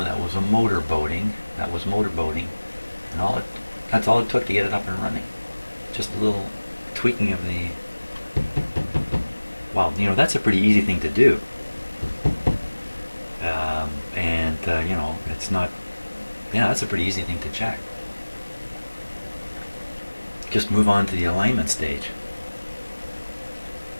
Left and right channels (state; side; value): inverted; both; correlation -1.00